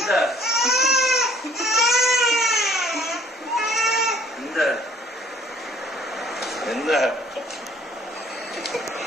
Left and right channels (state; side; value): normal; both; correlation 0.57